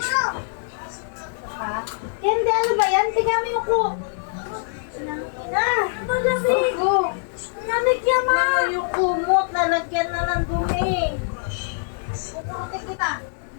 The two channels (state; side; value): silent; right; digital silence